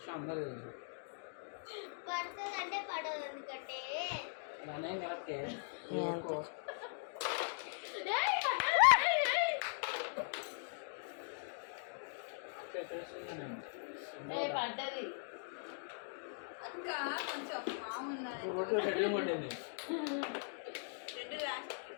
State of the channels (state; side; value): silent; right; digital silence